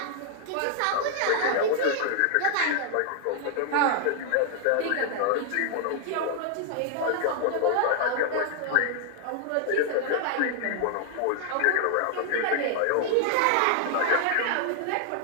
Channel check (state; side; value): different; both; correlation 0.00